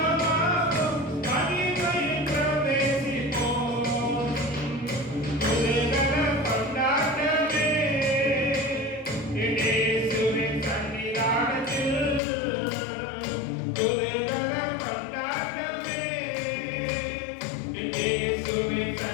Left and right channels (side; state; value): right; drops out; at 12.2 s